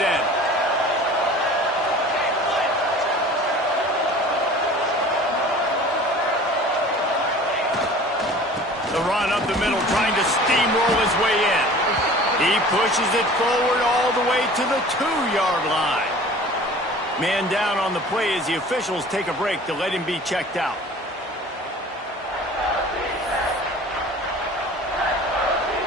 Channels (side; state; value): both; normal; correlation 0.44